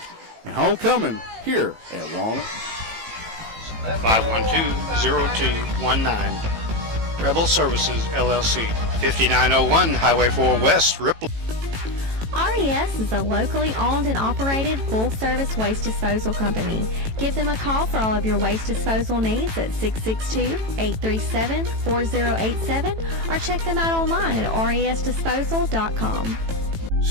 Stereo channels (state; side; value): late; left; 18 ms